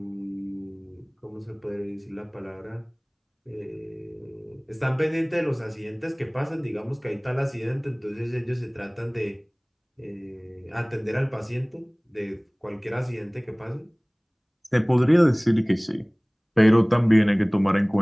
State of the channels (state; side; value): identical; both; correlation 1.00